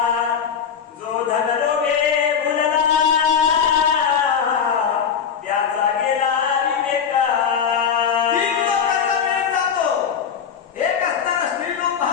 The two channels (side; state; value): right; quieter; 7.3 dB